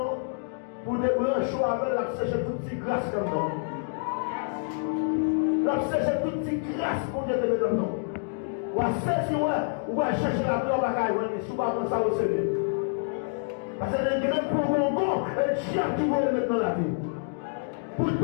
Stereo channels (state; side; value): silent; right; digital silence